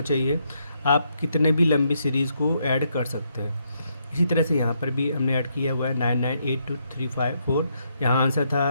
चाहिए, आप कितने भी लंबी सीरीज़ को ऐड कर सकते हैं। इसी तरह से यहाँ पर भी हमने ऐड किया हुआ है 9982354। यहाँ आंसर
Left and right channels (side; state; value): both; inverted; correlation -0.76